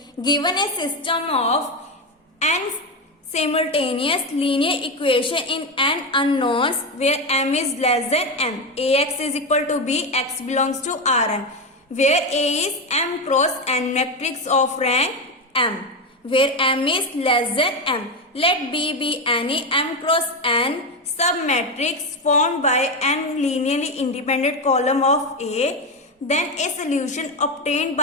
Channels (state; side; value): normal; both; correlation 0.13